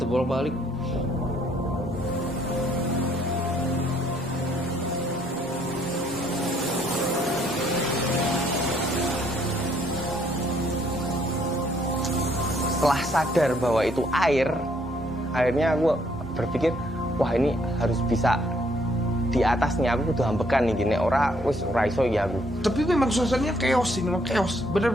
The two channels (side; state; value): both; normal; correlation 0.67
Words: bolak-balik. Setelah sadar bahwa itu air, akhirnya aku berpikir, wah ini harus bisa di atasnya, aku kudu ambekan nih gini, ora iso ya aku. Tapi memang suasananya chaos sih, memang chaos,